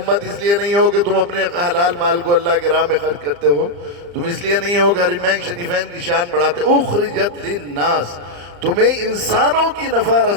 اس لیے نہیں ہو کہ تم اپنے حلال مال کو اللہ کے راہ میں خرچ کرتے ہو، تم اس لیے نہیں ہو کہ حرمین شریفین کی شان بڑھاتے ہو، اخرجت للناس، تمہیں انسانوں کی نفع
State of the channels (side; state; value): left; late; 35 ms